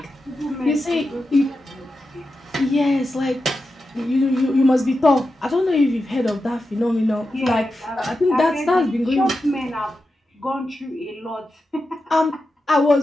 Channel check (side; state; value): both; normal; correlation 0.90